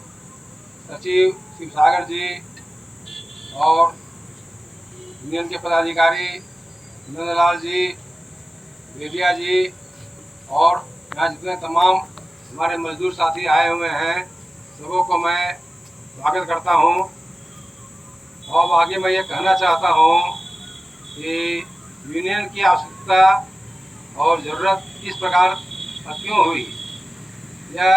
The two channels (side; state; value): both; normal; correlation 0.96